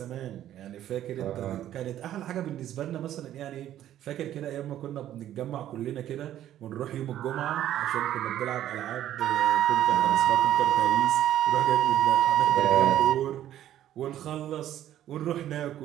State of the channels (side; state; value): left; quieter; 12.0 dB